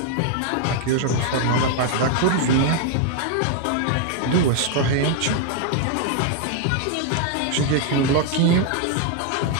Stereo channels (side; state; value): both; different; correlation 0.00